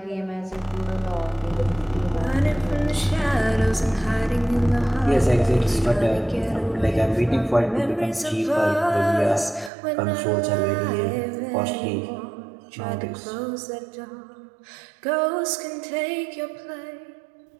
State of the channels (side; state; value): left; drops out; at 9.7 s